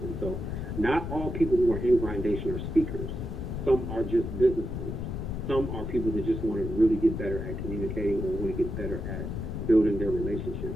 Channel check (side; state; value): left; noise; rumble, 4 dB below the sound